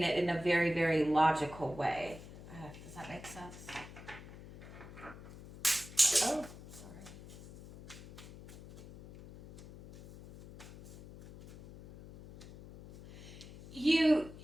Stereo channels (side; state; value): left; noise; hum, 16 dB below the sound